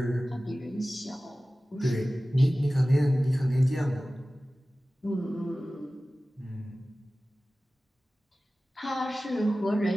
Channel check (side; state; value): both; normal; correlation 0.96